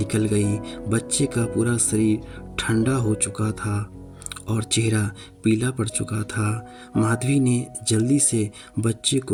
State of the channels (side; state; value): both; identical; correlation 1.00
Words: गई। बच्चे का पूरा शरीर ठंडा हो चुका था और चेहरा पीला पड़ चुका था। माधवी ने जल्दी से बच्चे